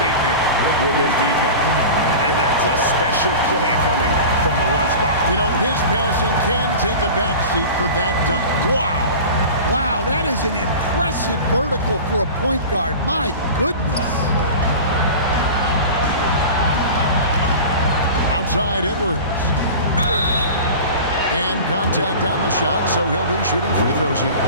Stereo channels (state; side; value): inverted; both; correlation -0.35